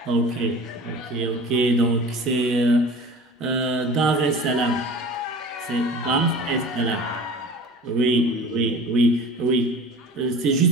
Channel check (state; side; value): normal; both; correlation 0.39